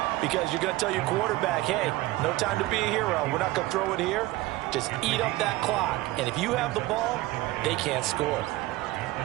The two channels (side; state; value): left; quieter; 18.2 dB